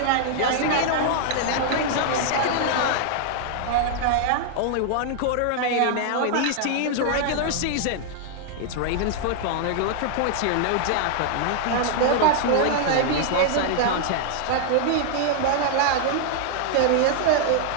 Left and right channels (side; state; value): both; different; correlation -0.01